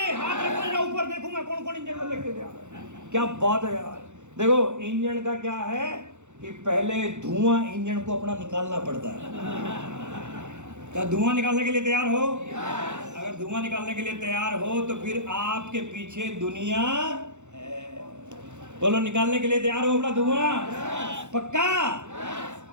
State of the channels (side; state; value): left; late; 0.84 ms